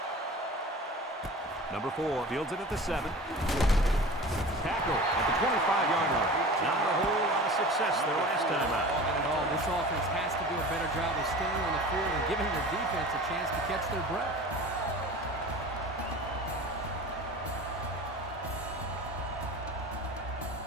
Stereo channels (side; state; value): both; normal; correlation 0.38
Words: Number 4 fields it at the 7. Tackle at the 25-yard line. Not a whole lot of success there last time out. Not at all. This offense has to do a better job of staying on the field and giving their defense a chance to catch their breath.